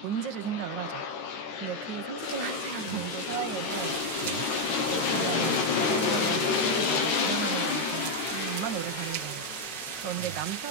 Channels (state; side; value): late; right; 13 ms